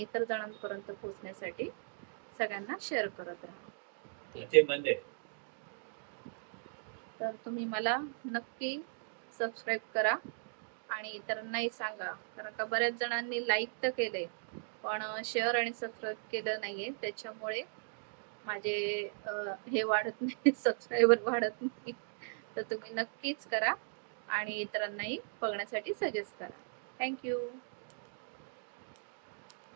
इतर जणांपर्यंत पोहोचण्यासाठी सगळ्यांना शेअर करत राहा. तर तुम्ही मला नक्की सबस्क्राईब करा आणि इतरांनाही सांगा, कारण का बऱ्याच जणांनी लाईक तर केले पण शेअर आणि सबस्क्राईब केलं नाहीये, त्याच्यामुळे माझे हे वाढत नाही, सबस्क्रायबर वाढत नाही. तर तुम्ही नक्कीच करा आणि इतरांनाही बघण्यासाठी सजेस्ट करा. थँक्यू.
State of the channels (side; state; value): left; silent; digital silence